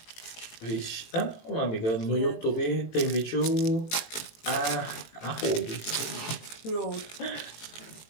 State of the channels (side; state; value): right; late; 18 ms